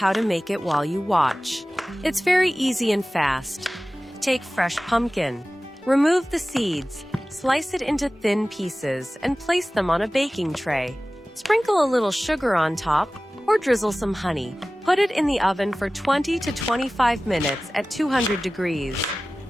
to make it while you watch. It's very easy and fast. Take fresh pumpkin. Remove the seeds, slice it into thin pieces, and place them on a baking tray. Sprinkle a little sugar on top, or drizzle some honey. Put it in the oven for 20 to 25 minutes at 200 degrees.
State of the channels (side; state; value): both; normal; correlation 0.97